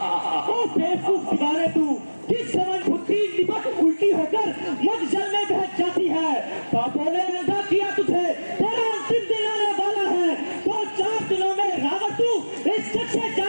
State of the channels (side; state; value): both; inverted; correlation -1.00